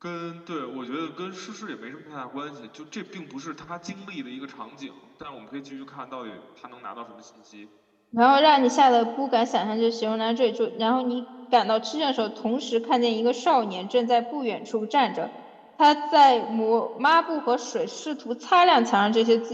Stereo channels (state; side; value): identical; both; correlation 1.00